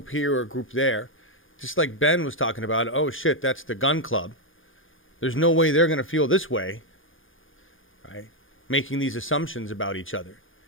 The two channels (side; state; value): right; late; 0.58 ms